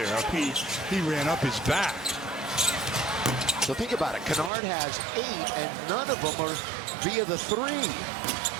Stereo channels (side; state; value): left; drops out; at 4.5 s